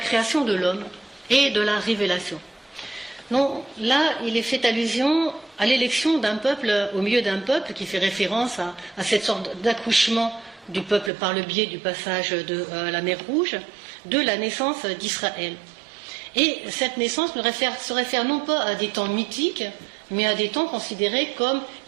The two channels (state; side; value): drops out; left; at 11.1 s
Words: de l'homme et de la révélation. Donc là, il est fait allusion à l'élection d'un peuple au milieu d'un peuple, qui fait référence à cette sorte d'accouchement du peuple par le biais du passage de la mer Rouge, de la naissance d'Israël. Et cette naissance se réfère non pas à des temps mythiques, mais à des temps considérés comme